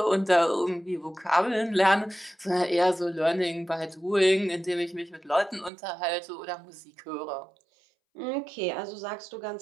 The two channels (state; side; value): drops out; left; at 5.7 s